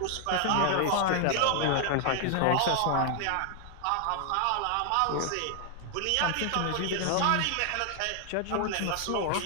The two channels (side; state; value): both; different; correlation 0.00